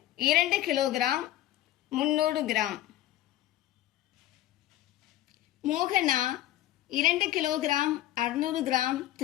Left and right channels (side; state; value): right; quieter; 14.2 dB